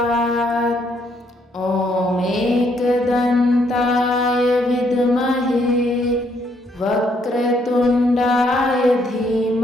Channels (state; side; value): normal; both; correlation 0.71